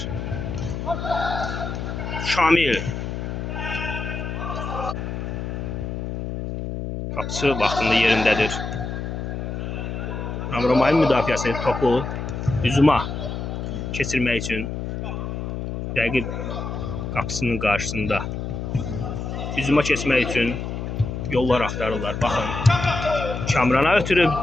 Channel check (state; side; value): noise; left; hum, 5 dB below the sound